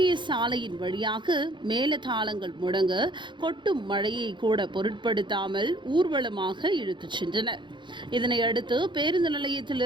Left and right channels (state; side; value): late; left; 0.23 ms